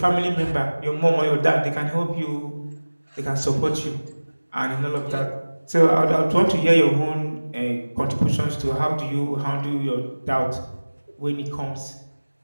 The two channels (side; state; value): both; inverted; correlation -1.00